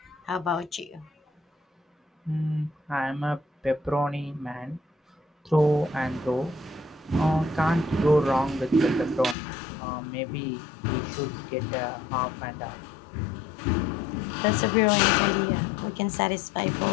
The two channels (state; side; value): drops out; right; at 9.3 s